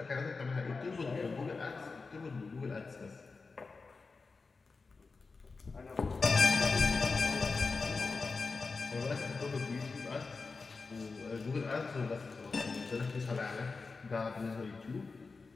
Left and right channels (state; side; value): quieter; right; 4.2 dB